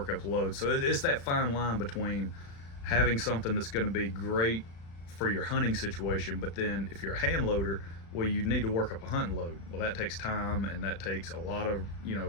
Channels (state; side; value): late; right; 36 ms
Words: up load. So it's that fine line between having something that's going to be great for your hunting situation, but then if you're a hand loader, well, you need to work up a hunting load. Well, that takes time, and that takes a lot of